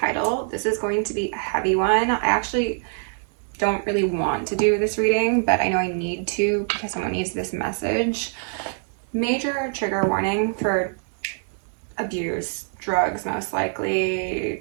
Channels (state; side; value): silent; left; 61 dB below the other